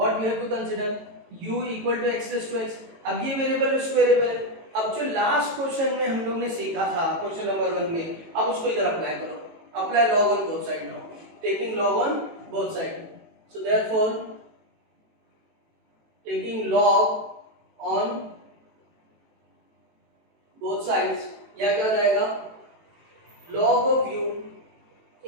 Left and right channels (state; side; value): late; left; 18 ms